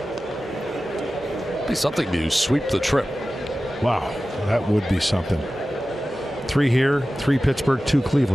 Be something to sweep the trip. Wow, that would be something. 3 here, 3 Pittsburgh, 2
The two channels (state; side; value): normal; both; correlation 0.95